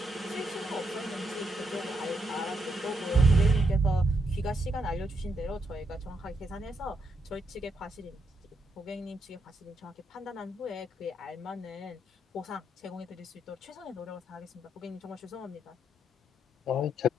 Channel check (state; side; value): normal; both; correlation 0.79